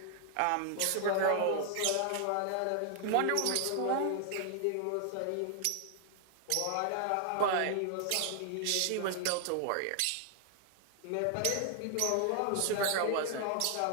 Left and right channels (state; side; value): different; both; correlation 0.00